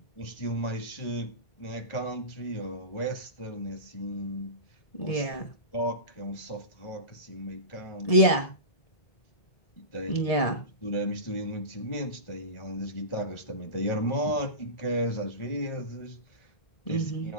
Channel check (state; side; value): late; right; 1.7 ms